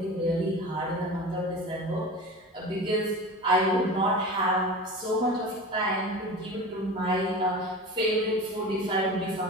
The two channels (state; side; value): normal; both; correlation 0.33